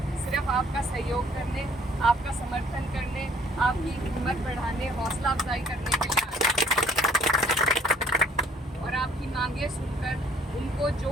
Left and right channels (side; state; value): both; normal; correlation 0.59